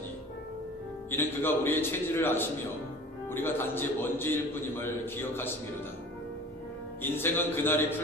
이는 그가 우리의 체질을 아시며 우리가 단지 먼지일 뿐임을 기억하심이로다. 인생은 그날이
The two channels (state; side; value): normal; both; correlation 0.43